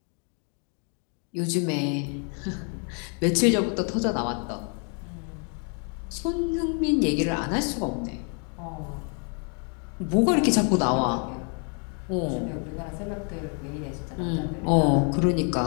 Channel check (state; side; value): quieter; right; 39.7 dB